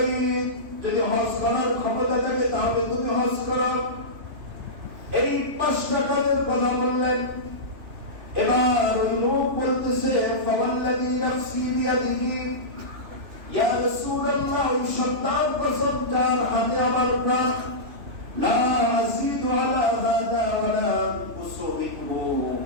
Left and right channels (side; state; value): left; late; 2.9 ms